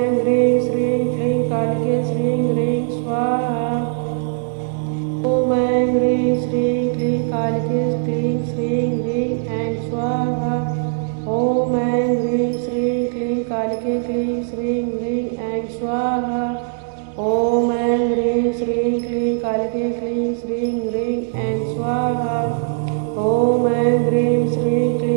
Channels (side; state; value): left; silent; digital silence